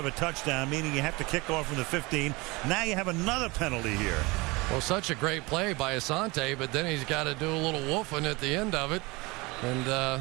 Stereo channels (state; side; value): quieter; left; 24.6 dB